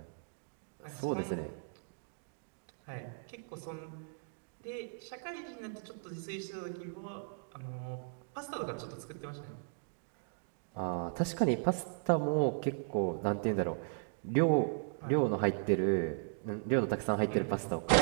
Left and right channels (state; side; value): silent; left; digital silence